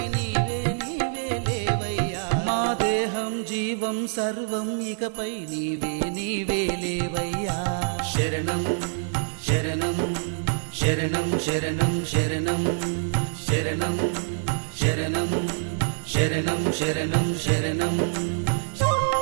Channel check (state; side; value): silent; left; digital silence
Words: నీవే నీవే లేవయ్యా మా దేహం జీవం సర్వం ఇకపై నీవే నీవే లేవయ్యా శరణం శరణం శరణం శరణం శరణం శరణం శరణం శరణం శరణం శరణం